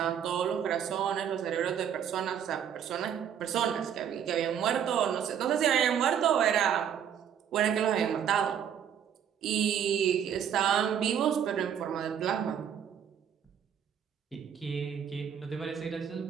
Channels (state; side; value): quieter; left; 8.7 dB